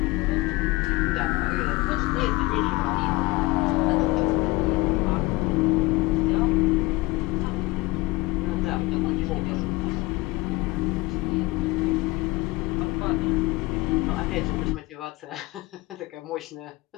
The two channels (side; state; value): right; quieter; 21.1 dB